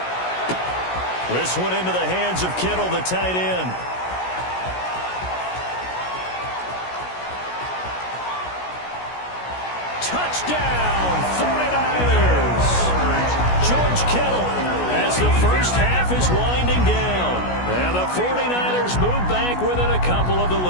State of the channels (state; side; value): late; right; 16 ms